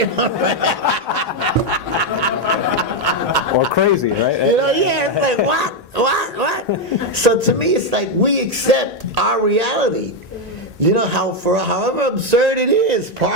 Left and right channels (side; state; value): both; normal; correlation 0.04